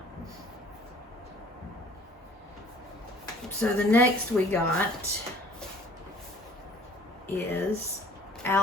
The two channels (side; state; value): both; normal; correlation 0.53